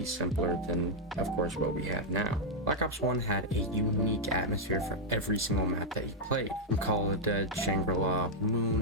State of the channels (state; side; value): normal; both; correlation -0.03